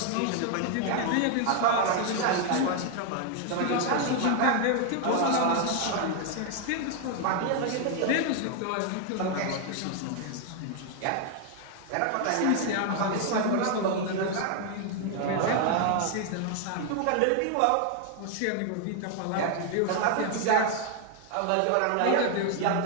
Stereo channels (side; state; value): both; different; correlation 0.00